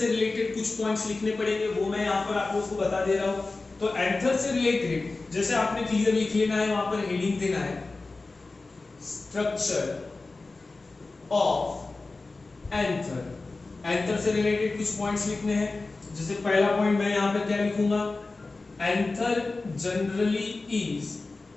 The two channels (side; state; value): right; quieter; 3.5 dB